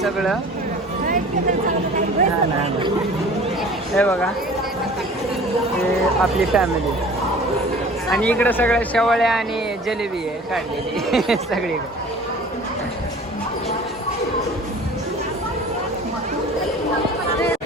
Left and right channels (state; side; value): normal; both; correlation 0.44